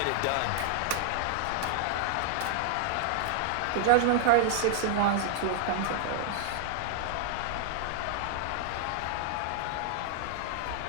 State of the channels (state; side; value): different; both; correlation -0.01